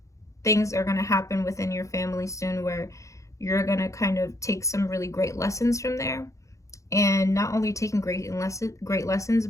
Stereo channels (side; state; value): right; late; 0.15 ms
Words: things are going to happen within your family soon where you're going to kind of take some really great lessons from there, and not only taking great lessons,